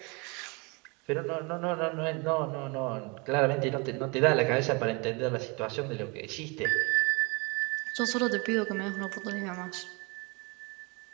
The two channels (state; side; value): quieter; left; 29.3 dB